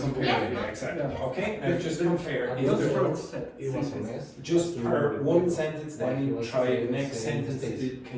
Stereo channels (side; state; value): both; identical; correlation 1.00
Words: it, yeah, exactly. Okay? And just compare. Is Just the first sentence. just per one sentence, then you try the next sentence.